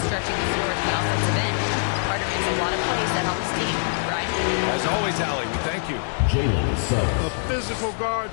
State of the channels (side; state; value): right; silent; digital silence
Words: stretching the floor at the offensive end. Carter makes a lot of plays that help his team. Brian? As always, Allie, we thank you. A physical